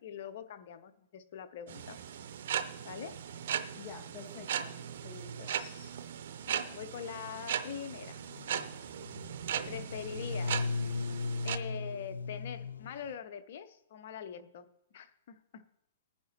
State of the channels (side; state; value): both; inverted; correlation -0.63